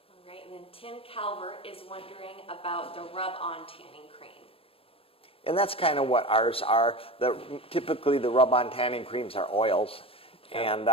All right, and then Tim Calvert is wondering about about the rub-on tanning cream. And that's kind of what ours are. Typically, the rub-on tanning creams are oils. And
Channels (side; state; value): right; late; 0.27 ms